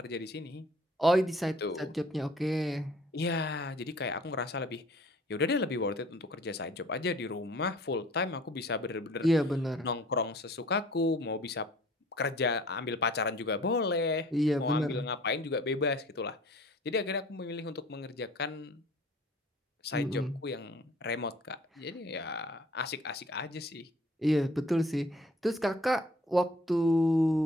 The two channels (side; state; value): both; normal; correlation 0.52